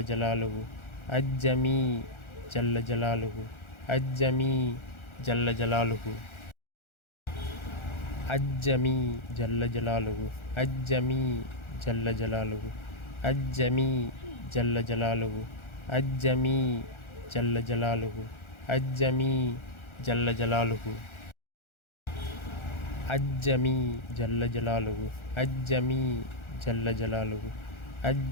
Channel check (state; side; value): late; right; 1.4 ms